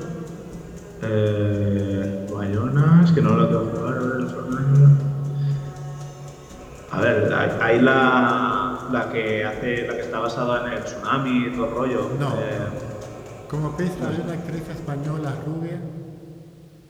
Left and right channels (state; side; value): identical; both; correlation 1.00